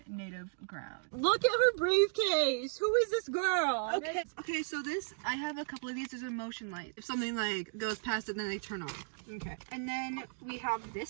native ground. Look at her briefcase. Who is this girl? Okay, so this, I have a couple of these. There's a motion light. If something like goes past it, then they turn on. Okay. And then we have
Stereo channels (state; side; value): silent; left; digital silence